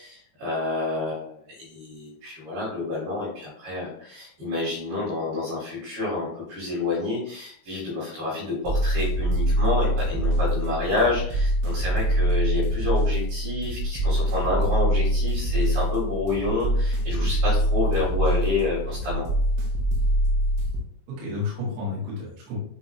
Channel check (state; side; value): late; left; 22 ms